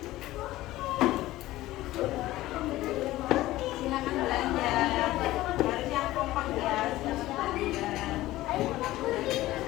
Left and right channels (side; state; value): right; quieter; 16.5 dB